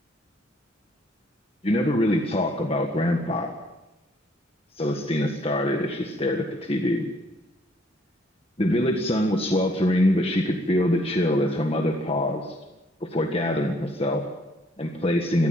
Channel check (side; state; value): both; normal; correlation 0.65